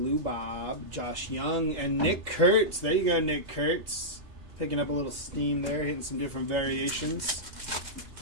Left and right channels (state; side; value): late; left; 2.8 ms